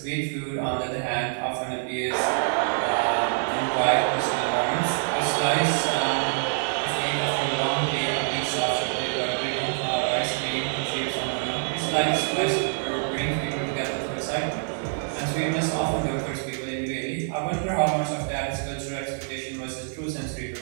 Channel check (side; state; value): left; silent; digital silence